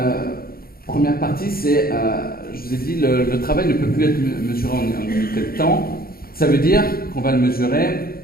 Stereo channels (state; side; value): late; right; 0.43 ms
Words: partie, c'est, je vous ai dit, le travail ne peut plus être mesuré en unité de temps. Ça veut dire qu'on va le mesurer